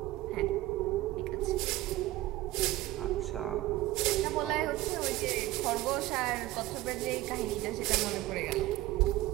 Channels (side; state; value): left; quieter; 16.9 dB